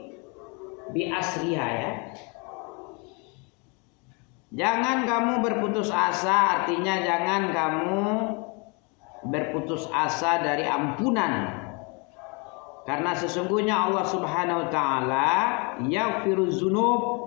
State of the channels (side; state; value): right; quieter; 31.9 dB